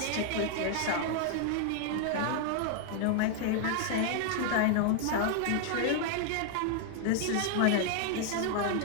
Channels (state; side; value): different; both; correlation 0.00